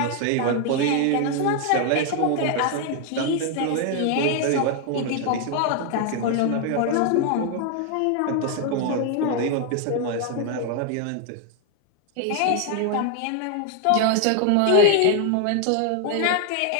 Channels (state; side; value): different; both; correlation 0.00